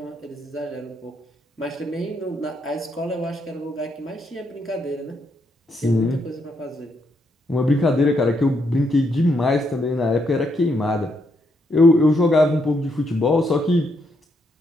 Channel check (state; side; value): normal; both; correlation 0.77